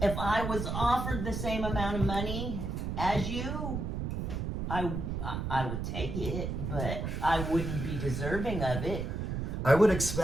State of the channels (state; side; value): noise; right; rumble, 3 dB below the sound